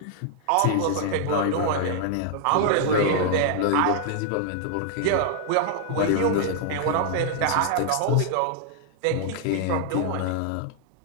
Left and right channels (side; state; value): both; different; correlation 0.00